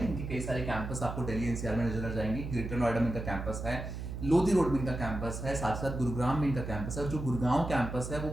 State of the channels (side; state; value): right; noise; hum, 6 dB below the sound